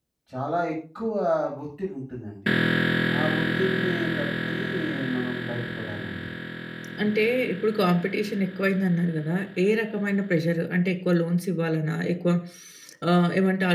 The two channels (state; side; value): identical; both; correlation 1.00